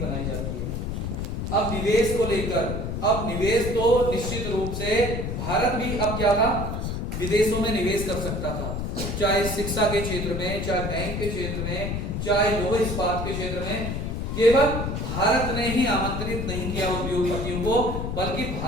जाती है। अब निवेश को लेकर, अब निवेश तो निश्चित रूप से भारत भी अब क्या था, विदेशों में निवेश कर सकता था, चाहे शिक्षा के क्षेत्र में, चाहे बैंक के क्षेत्र में, चाहे लौह इस्पात के क्षेत्र में। केवल भारत ने ही आमंत्रित नहीं किया उद्योगपतियों को, बल्कि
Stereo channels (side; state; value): left; noise; rumble, 3 dB below the sound